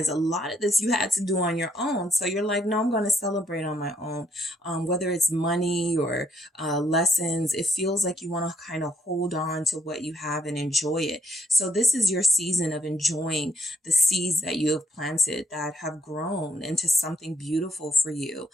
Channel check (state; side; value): normal; both; correlation 0.72